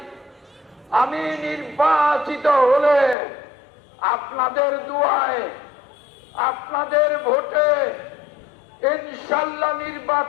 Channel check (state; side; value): drops out; right; at 3.2 s